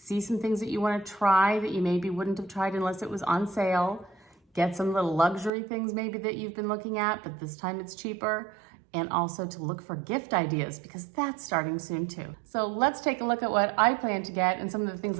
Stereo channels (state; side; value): drops out; left; at 5.5 s